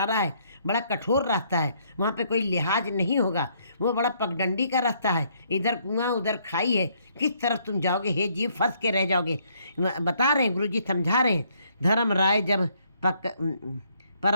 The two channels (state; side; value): inverted; both; correlation -0.68